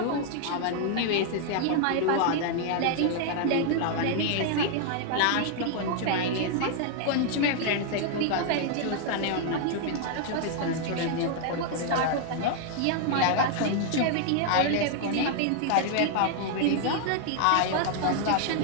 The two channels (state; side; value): different; both; correlation 0.00